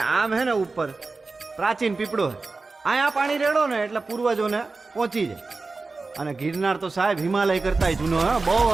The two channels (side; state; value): left; quieter; 3.8 dB